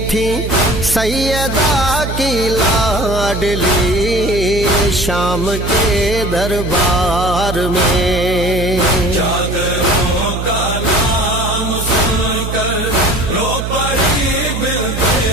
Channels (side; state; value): right; noise; hum, 5 dB below the sound